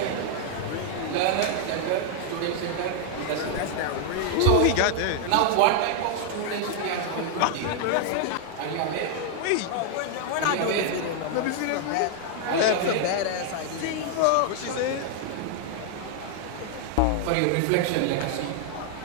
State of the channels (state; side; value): different; both; correlation 0.00